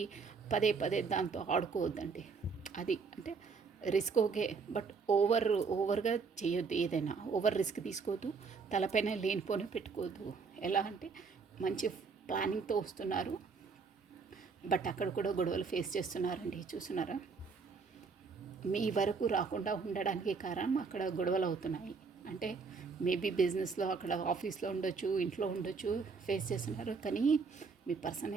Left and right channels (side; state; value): left; quieter; 5.0 dB